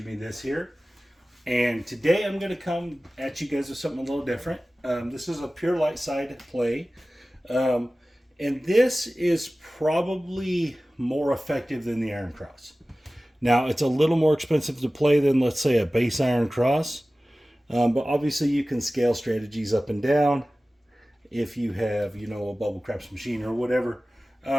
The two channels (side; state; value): both; normal; correlation 0.97